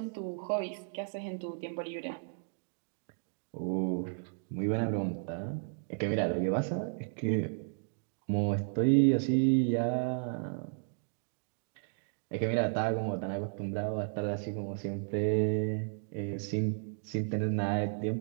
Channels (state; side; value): silent; left; digital silence